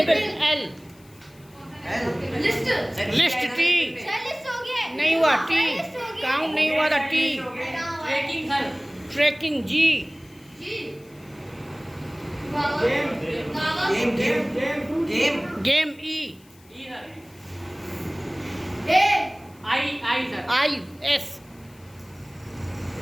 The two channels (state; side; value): noise; left; hiss, 28 dB below the sound